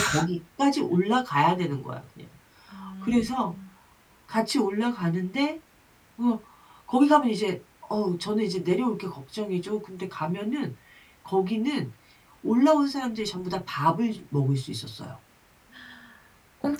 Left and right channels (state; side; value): identical; both; correlation 1.00